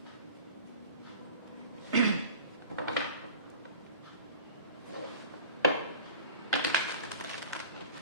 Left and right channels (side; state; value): both; inverted; correlation -0.41